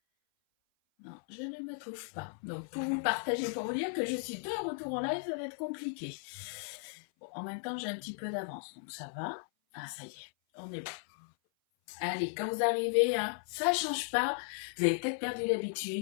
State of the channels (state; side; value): silent; right; 54 dB below the other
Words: Non, je ne me trouve pas. Donc, pour vous partager, pour vous dire que je suis de retour en live, ça va être compliqué. Bon, en même temps, j'ai un petit peu d'avance, donc ça va. Ah, ça y est, on est bon. Allez, quand vous arrivez, hein, ça change pas. Vous avez peut-être perdu